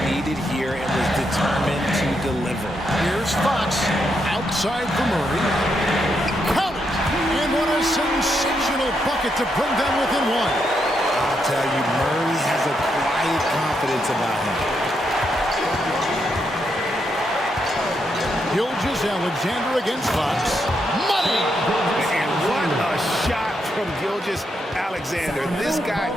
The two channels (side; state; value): both; normal; correlation 0.80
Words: needed here and was determined to deliver. Here's Fox. Outside for Murray. Count it! And what a sensational bucket to bring them within 1. I'll tell you, Murray has a quiet confidence about him. Gilgeous-Alexander against Fox. Money! And what a shot from Gilgeous-Alexander. This guy